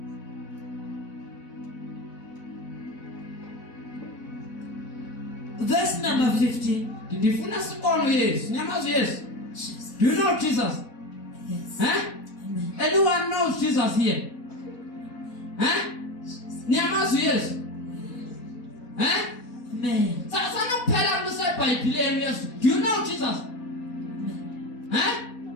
Verse number 15. Ndifuna sibone Yesu. Nyamazi Yesu. Do you know Jesus? Yes. Amen. Anyone knows Jesus here? Nyamazi Yesu. Amen. Sana kuphela kuseBhayibhelini Yesu. Do you know Jesus?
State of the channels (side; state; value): right; late; 4.1 ms